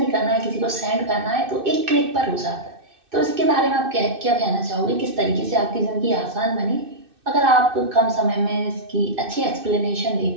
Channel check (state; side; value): late; left; 2.6 ms